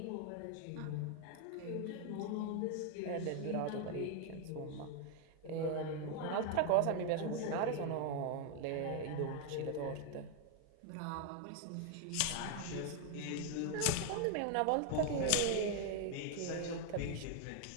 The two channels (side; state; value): both; different; correlation 0.01